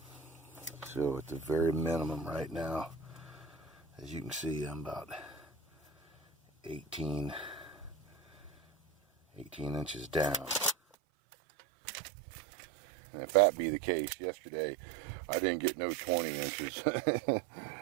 So at the very minimum right now, as you can see, I'm about 18 inches down. And if that be the case, yesterday I didn't get no 20 inches. You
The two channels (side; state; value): left; drops out; at 10.8 s